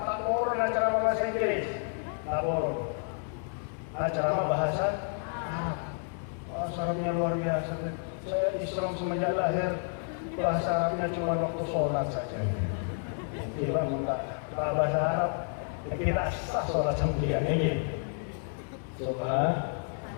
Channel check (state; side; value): silent; right; 56 dB below the other